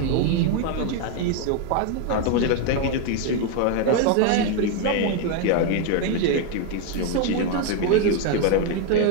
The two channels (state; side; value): different; both; correlation 0.01